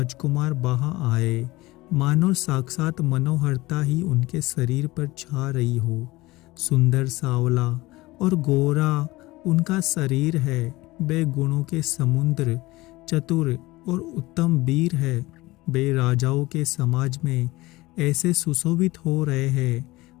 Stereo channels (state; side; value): quieter; right; 20.0 dB